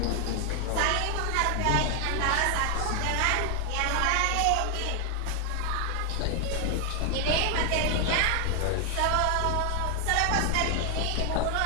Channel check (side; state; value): both; different; correlation 0.00